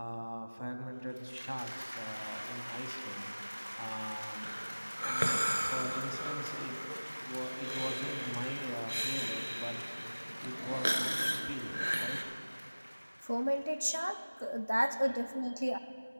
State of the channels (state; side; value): inverted; both; correlation -1.00